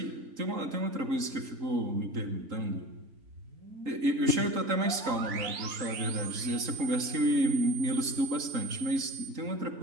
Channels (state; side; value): late; left; 3.7 ms